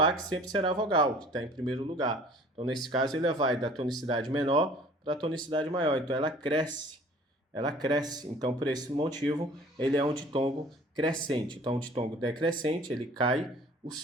A, que sempre será vogal, que está em primeiro lugar. Então, nesse caso, ele vai da tonicidade menor para a tonicidade maior. Então, ela cresce. Ela cresce. Então, por esse motivo, ele é um ditongo crescente. Então, um ditongo decrescente, ele cai o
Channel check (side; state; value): both; normal; correlation 0.50